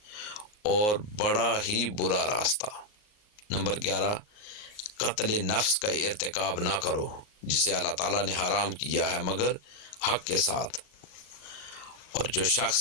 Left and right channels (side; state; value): right; late; 38 ms